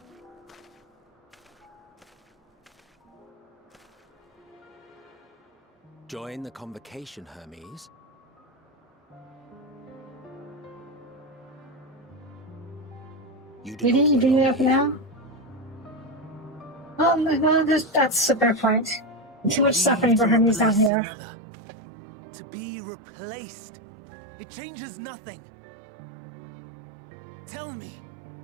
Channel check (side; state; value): left; drops out; at 20.9 s